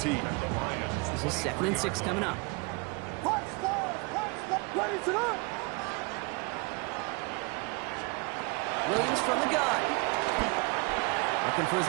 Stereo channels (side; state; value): left; quieter; 29.7 dB